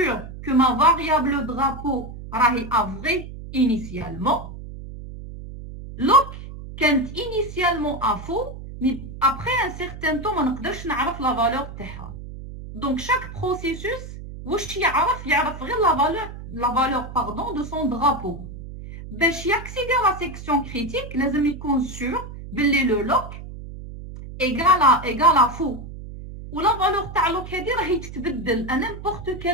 que ma variable drapeau rahi a vrai initialement. Look كانت initialement à faux mais après un certain temps ما نقدرش نعرف la valeur تاعها. Donc chaque processus واش يعرف غير la valeur pardon de son drapeau. باش ياكسيدي à la section critique لازم يكون sûr باللي le lock égale à faux. ولا valeur تاع lock هذه راهي تتبدل à n'importe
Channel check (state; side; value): noise; right; hum, 12 dB below the sound